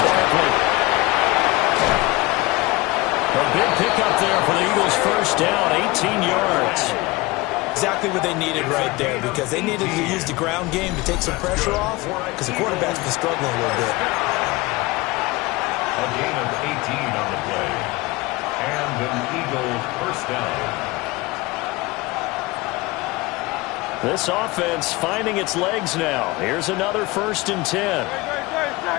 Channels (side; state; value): right; quieter; 22.2 dB